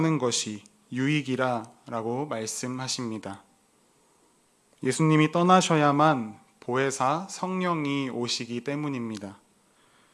것이 유익이라고 말씀하십니다. 예수님이 떠나셔야만 보혜사 성령이 오시기 때문입니다.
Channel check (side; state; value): both; identical; correlation 1.00